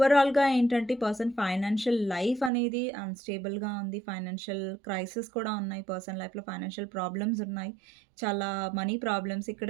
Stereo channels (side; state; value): left; drops out; at 2.5 s